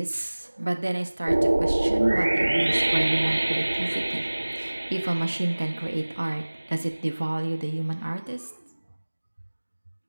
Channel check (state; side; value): inverted; both; correlation -1.00